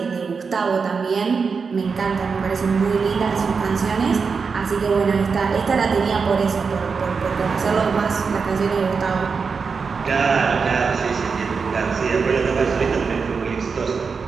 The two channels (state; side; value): quieter; left; 5.3 dB